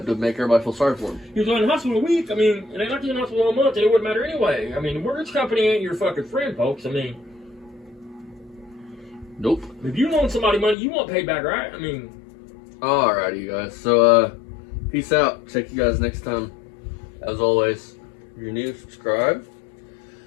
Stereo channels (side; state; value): right; drops out; at 10.8 s